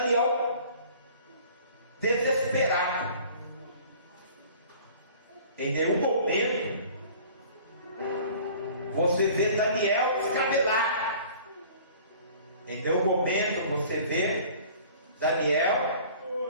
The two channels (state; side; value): inverted; both; correlation -0.48